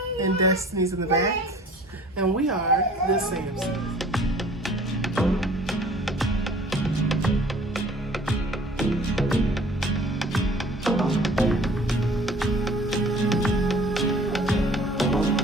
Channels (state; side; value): normal; both; correlation 0.50